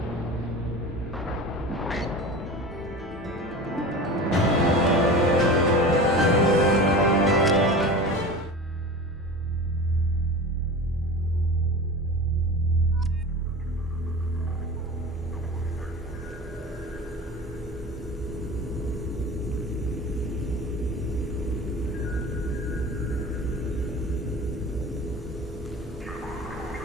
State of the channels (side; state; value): both; normal; correlation 0.34